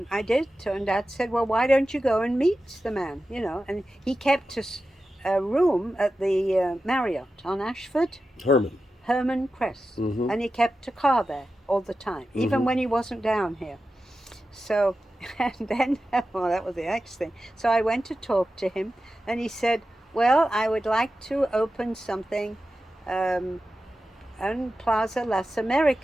I did, and Dad said, "Well, why don't you go and meet the man?" And he kept us a room at the Marriott on Ashford. Herman. Herman Kress, Mm-hmm. and he kept a car there all the time, even Mm-hmm. when he wasn't down here. So, and then, well, that was the next thing. So I went to talk to him, and he said, "Well, I would like to open something um, on Plaza Las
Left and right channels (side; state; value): both; normal; correlation 0.92